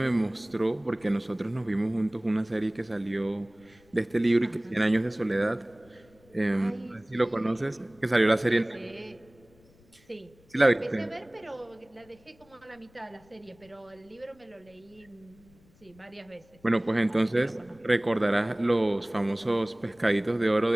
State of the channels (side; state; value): left; noise; rumble, 29 dB below the sound